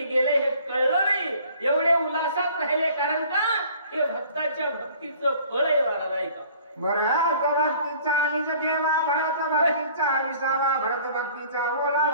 गेले हे कळलं नाही, एवढे उल्हासात राहिले. कारण का? हे भक्ताच्या भक्तीचं फळ आहे महाराज. ऐका. भरत भक्तीचा निज ठेवा भरत भक्तीचा विसावा भरत भक्तीचा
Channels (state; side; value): inverted; both; correlation -0.53